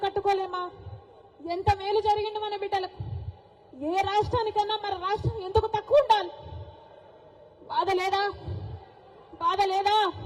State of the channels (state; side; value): identical; both; correlation 1.00